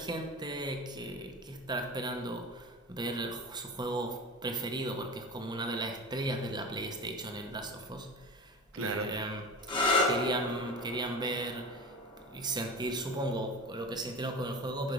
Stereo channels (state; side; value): normal; both; correlation 0.32